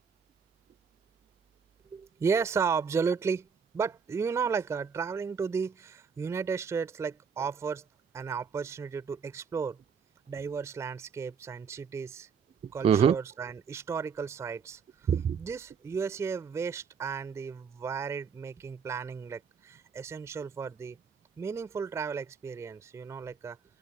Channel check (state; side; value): quieter; left; 6.2 dB